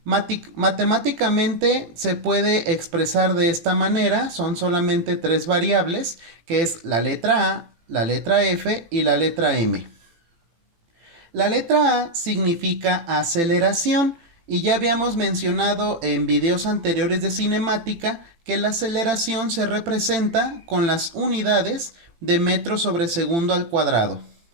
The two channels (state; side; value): late; left; 18 ms